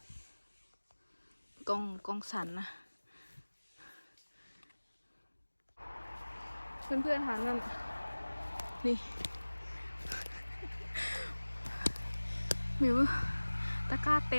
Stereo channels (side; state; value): both; inverted; correlation -1.00